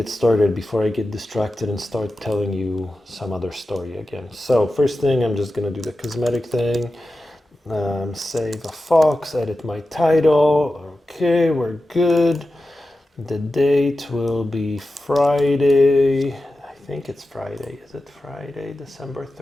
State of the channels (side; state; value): both; normal; correlation 0.93